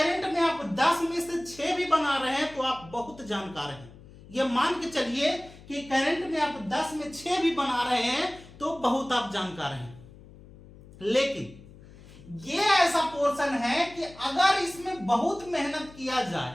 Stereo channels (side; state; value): left; noise; hum, 20 dB below the sound